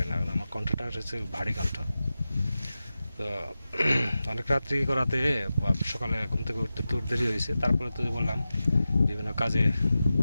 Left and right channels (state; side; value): inverted; both; correlation -0.94